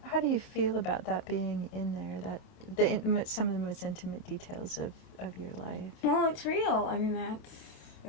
How do you feel about that being in there, some of the most intimate details of your life? Well, it's real. I mean,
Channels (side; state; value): right; late; 28 ms